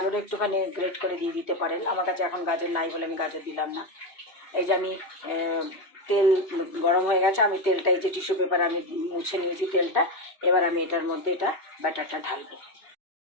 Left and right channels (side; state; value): right; late; 2.7 ms